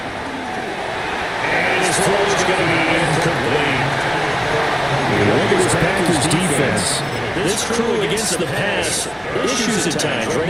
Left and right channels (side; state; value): both; identical; correlation 1.00